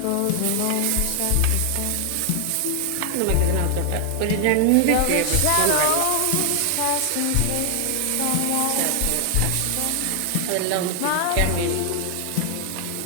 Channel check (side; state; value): both; different; correlation 0.00